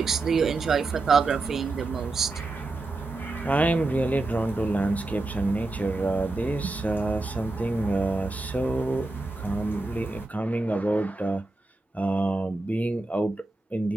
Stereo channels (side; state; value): left; quieter; 3.0 dB